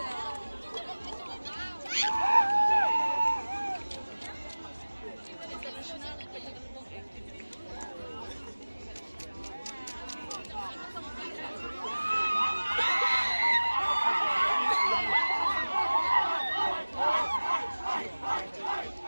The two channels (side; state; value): both; inverted; correlation -1.00